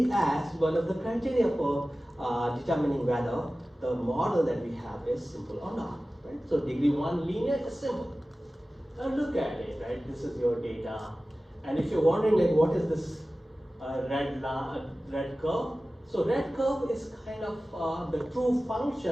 as one of the criteria for determining whether the model that we have is simple or not. Right? So degree 1 linear is simple. Now look at it, right? This is your data. And if you're wondering like what is this red curve, So red curve is kind of the true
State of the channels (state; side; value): normal; both; correlation 0.96